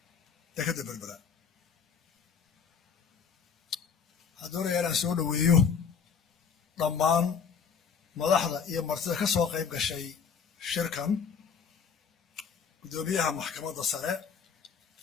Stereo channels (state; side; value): quieter; right; 6.4 dB